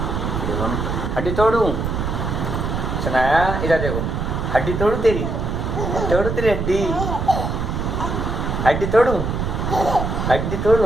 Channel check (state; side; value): noise; right; rumble, 2 dB below the sound